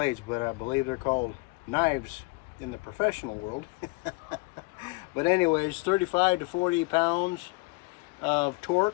but I believe they're called knives in the professional world. But anyways, 35 to 40 pounds of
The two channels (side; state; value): right; quieter; 26.8 dB